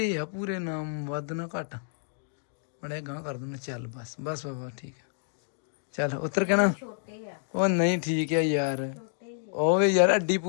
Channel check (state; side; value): silent; right; digital silence